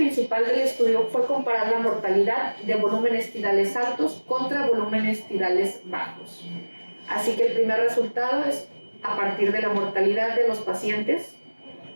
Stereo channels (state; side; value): inverted; both; correlation -1.00